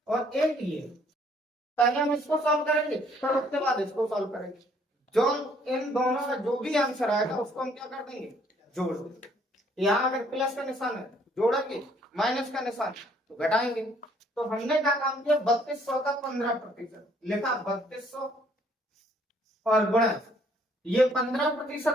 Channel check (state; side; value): normal; both; correlation 0.63